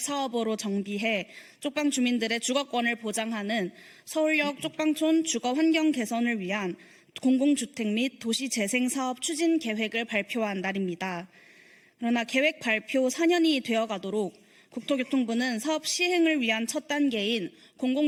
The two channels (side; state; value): both; identical; correlation 1.00